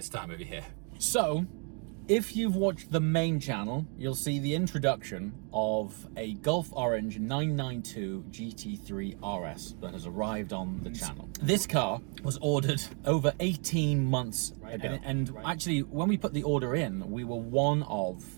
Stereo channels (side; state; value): left; quieter; 39.2 dB